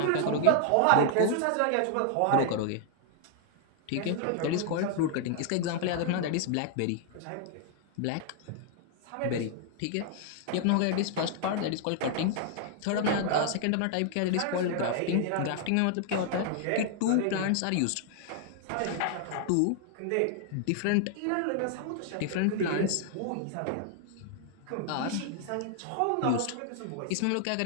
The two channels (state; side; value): different; both; correlation 0.00